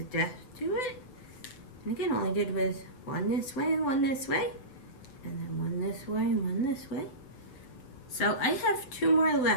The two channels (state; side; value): late; right; 7.8 ms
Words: depth to it. And again, all I did was one this way and one this way. And then one this way and one this way. So I have two more